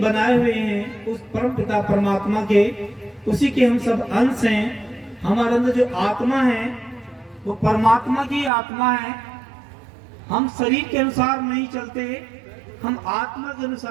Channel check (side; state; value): left; drops out; at 8.5 s